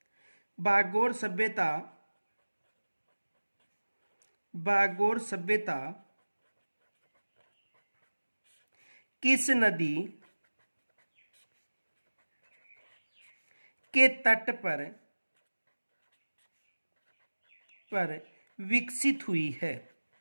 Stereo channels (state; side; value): inverted; both; correlation -1.00